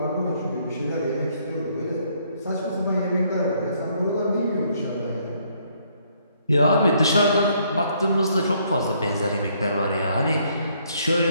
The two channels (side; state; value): both; inverted; correlation -0.68